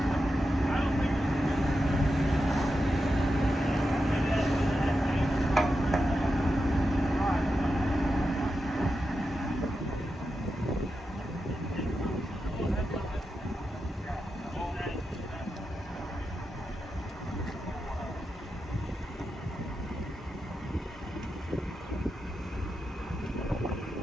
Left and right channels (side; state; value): both; normal; correlation 0.89